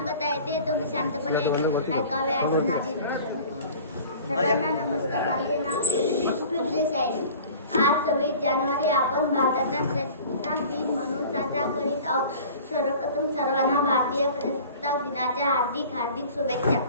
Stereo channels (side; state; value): both; inverted; correlation -0.43